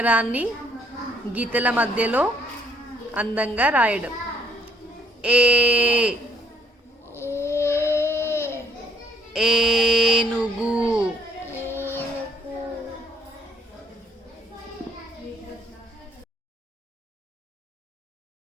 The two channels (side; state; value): both; normal; correlation 0.67